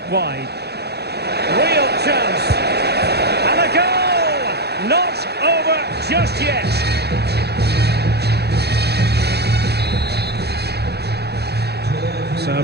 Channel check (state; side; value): late; left; 0.48 ms